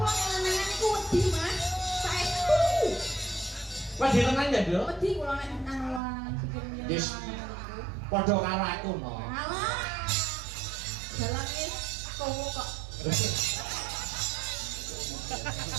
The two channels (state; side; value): drops out; left; at 6.0 s